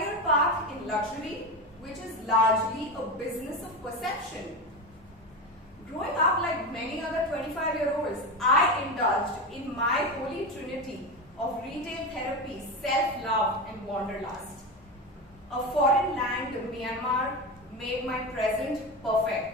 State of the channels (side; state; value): both; normal; correlation 0.20